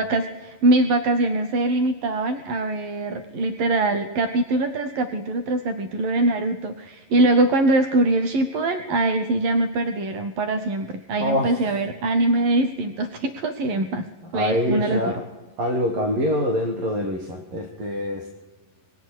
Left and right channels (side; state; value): left; late; 11 ms